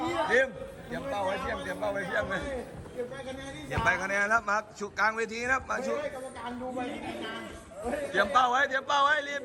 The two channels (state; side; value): identical; both; correlation 1.00